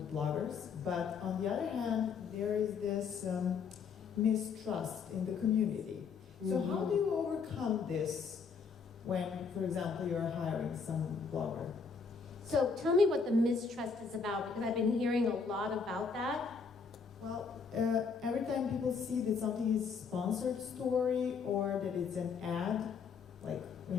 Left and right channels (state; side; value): quieter; right; 5.5 dB